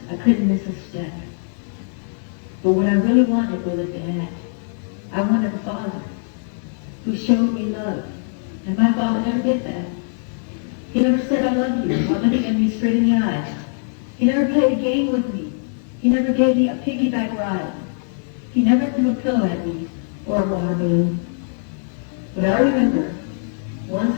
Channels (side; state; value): right; silent; 62 dB below the other